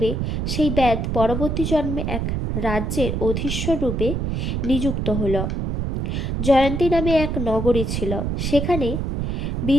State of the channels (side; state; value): right; noise; rumble, 1 dB below the sound